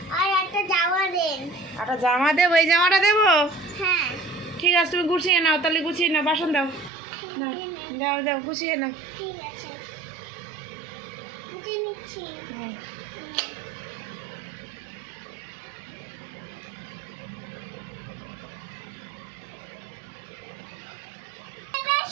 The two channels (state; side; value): drops out; left; at 6.9 s